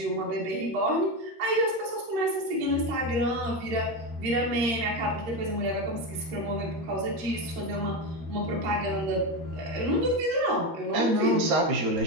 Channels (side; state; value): left; late; 13 ms